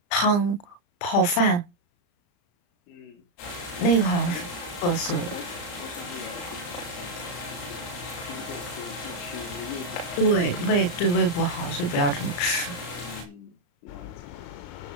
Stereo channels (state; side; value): late; right; 34 ms